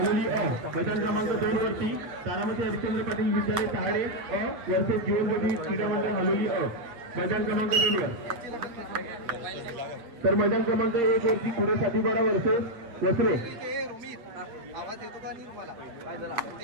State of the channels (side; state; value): left; late; 8.9 ms